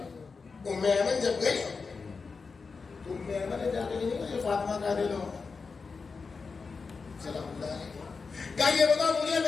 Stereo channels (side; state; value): right; quieter; 4.8 dB